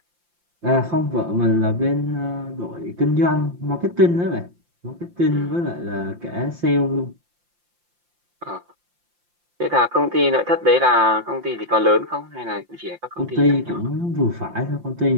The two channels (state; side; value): late; left; 5.7 ms